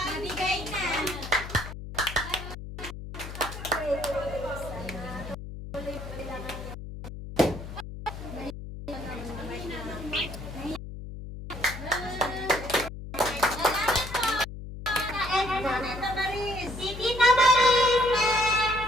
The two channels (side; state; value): left; noise; hum, 10 dB below the sound